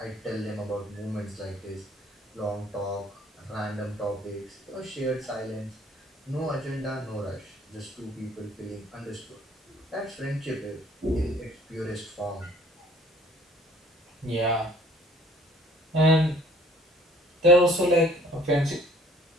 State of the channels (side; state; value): both; normal; correlation 0.56